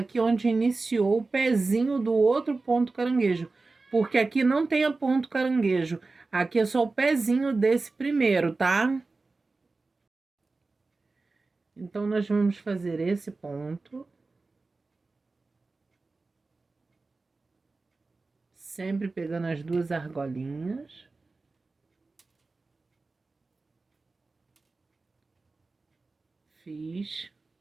onde iniciou o pezinho do outro ponto caranguejo. Porque aqui não tem a ponto caranguejo. Aqui é só o pezinho desse primeiro, tá? Então, nós vamos fazer esse ponto. Sempre pegando as 2 argolinhas. Fiz.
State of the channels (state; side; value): quieter; left; 3.7 dB